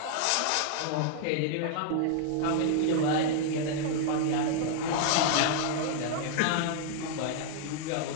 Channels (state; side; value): different; both; correlation -0.01